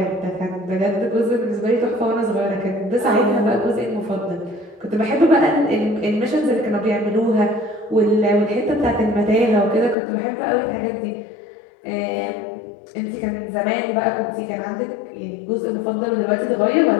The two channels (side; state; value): right; drops out; at 10.0 s